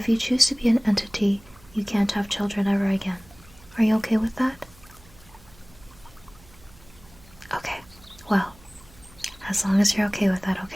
you choose to be an entity, you can't have children ever again. Are you okay with that? Okay, well, as long as you're okay with that,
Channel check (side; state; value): right; noise; hum, 25 dB below the sound